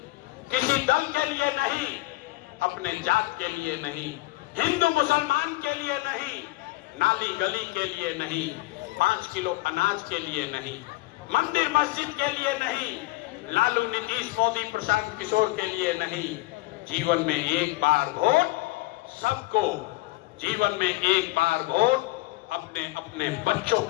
किसी दल के लिए नहीं, अपने जात के लिए नहीं, हिंदू मुसलमान के लिए नहीं, नाली गली के लिए नहीं, 5 किलो अनाज के लिए नहीं, मंदिर मस्जिद के लिए नहीं, लालू नीतीश मोदी प्रशांत किशोर के लिए नहीं। जीवन में एक बार वोट सबको, जीवन में एक बार वोट अपने अपने बच्चों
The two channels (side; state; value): right; quieter; 20.6 dB